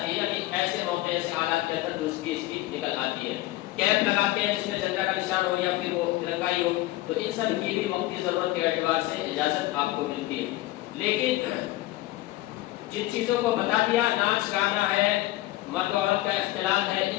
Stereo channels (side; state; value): right; quieter; 17.6 dB